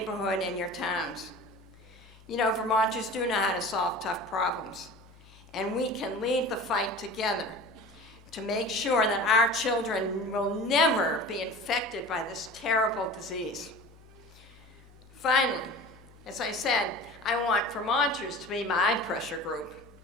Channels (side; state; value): left; noise; hum, 24 dB below the sound